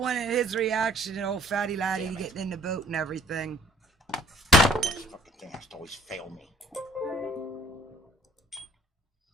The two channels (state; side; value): normal; both; correlation 0.55